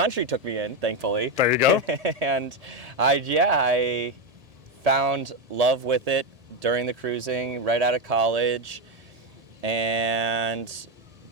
took me in, thankfully. There you go. And I found love with it during the cruising, right out of college, and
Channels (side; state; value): left; late; 1.8 ms